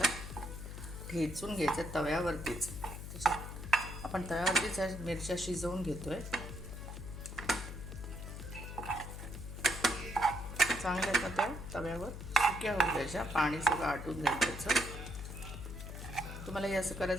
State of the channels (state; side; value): noise; left; hum, 9 dB below the sound